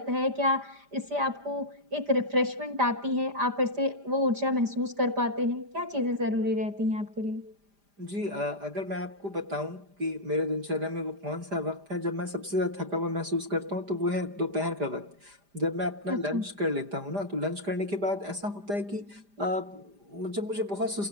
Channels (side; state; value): left; late; 5.0 ms